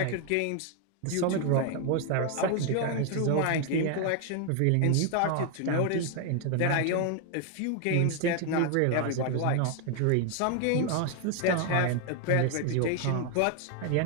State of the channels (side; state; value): both; different; correlation 0.01